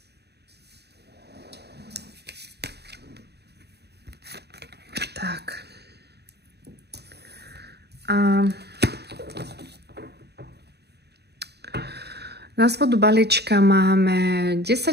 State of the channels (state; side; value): late; left; 0.48 ms